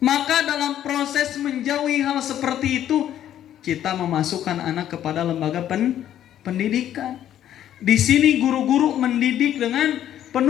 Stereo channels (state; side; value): quieter; right; 11.1 dB